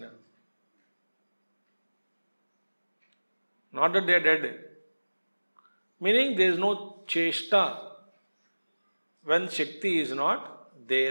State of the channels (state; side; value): inverted; both; correlation -1.00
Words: Not that they are dead. Meaning there is no cheshta when Shakti is not